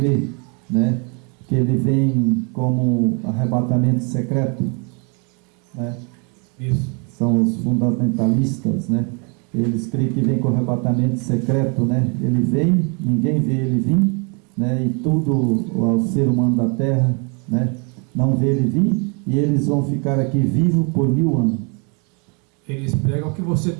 né, que ele vem como arrebatamento secreto, né? Isso. São os fundamentalistas, né? Eles creem que vem com arrebatamento secreto, né? Ele vem, ninguém vê ele vir, né? E tudo o ser humano da terra, né, não vê ele vir, e eles vão ficar aqui vivos por 1000 anos. Eles pregam que você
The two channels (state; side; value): quieter; left; 34.8 dB